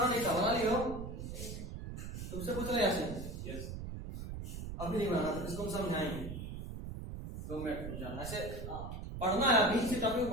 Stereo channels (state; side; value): noise; right; rumble, 7 dB below the sound